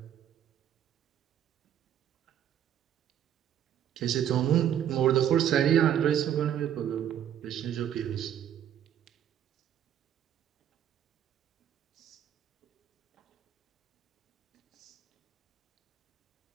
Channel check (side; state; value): left; quieter; 10.2 dB